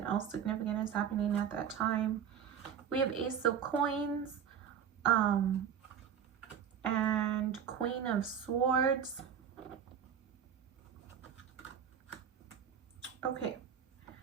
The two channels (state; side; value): quieter; left; 8.2 dB